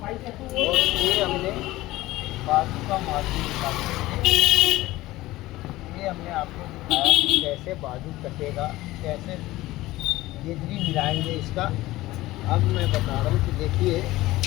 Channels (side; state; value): right; quieter; 17.7 dB